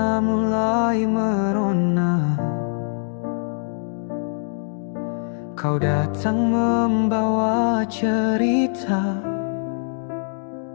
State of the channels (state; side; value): silent; right; digital silence